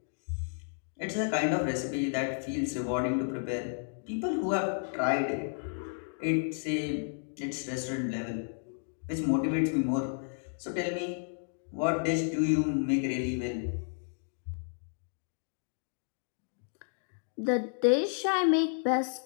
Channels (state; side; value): silent; right; digital silence